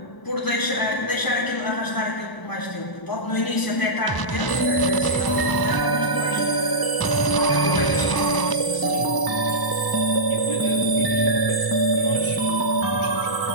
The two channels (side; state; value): right; late; 1.0 ms